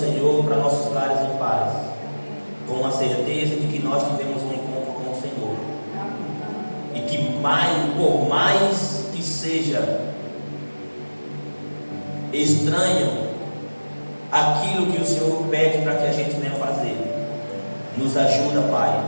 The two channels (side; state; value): both; inverted; correlation -1.00